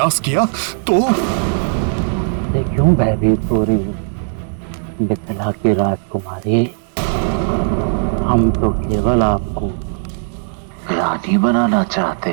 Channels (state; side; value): silent; left; 68 dB below the other